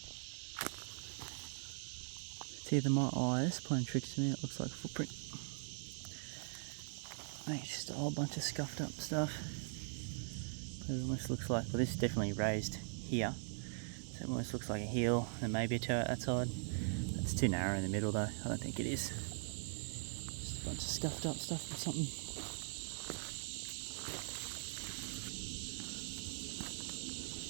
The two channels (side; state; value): left; silent; 50 dB below the other